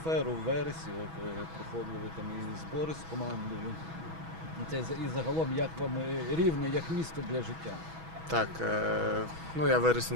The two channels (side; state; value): left; late; 6.2 ms